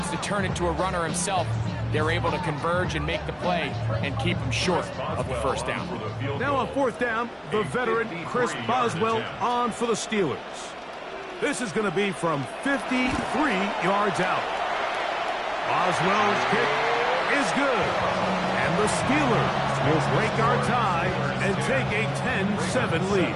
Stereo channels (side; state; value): both; identical; correlation 1.00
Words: to turn it to a runner himself, they're able to converge and make the play and keep him short of the 1st down. Now on 4th down, the veteran Chris Boswell on for the Steelers. This is going to be from 53 yards out. Boswell's kick is good. And the Steelers will break our tie and take a 10-7 lead.